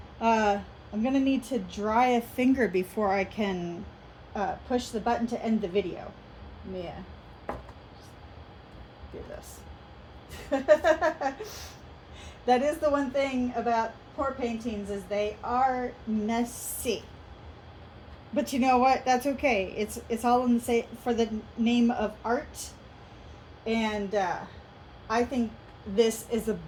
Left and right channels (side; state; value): both; identical; correlation 1.00